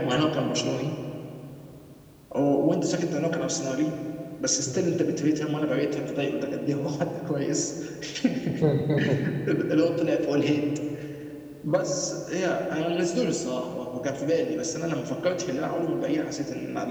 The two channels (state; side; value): identical; both; correlation 1.00